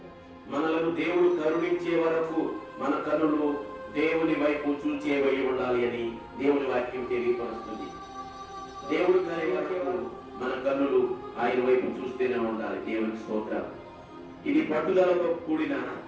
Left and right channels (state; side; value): identical; both; correlation 1.00